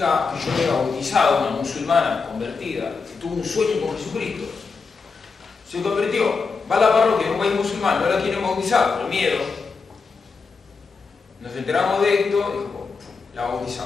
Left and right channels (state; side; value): quieter; right; 4.8 dB